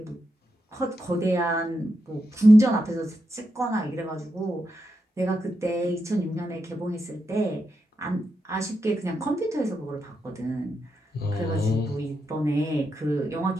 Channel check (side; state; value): both; normal; correlation 0.85